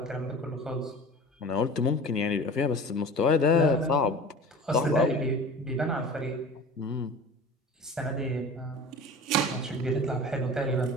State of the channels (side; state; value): both; normal; correlation 0.38